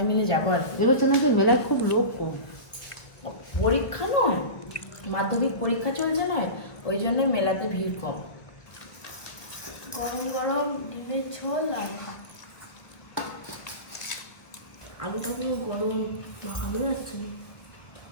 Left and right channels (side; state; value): right; late; 1.5 ms